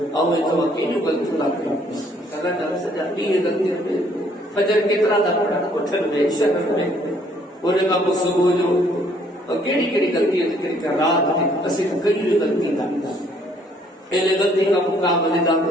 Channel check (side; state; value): both; normal; correlation 0.64